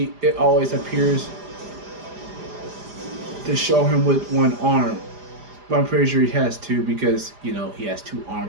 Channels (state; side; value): late; left; 4.9 ms